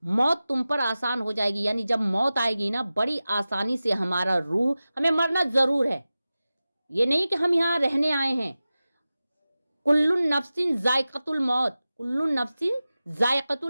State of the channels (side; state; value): both; inverted; correlation -0.95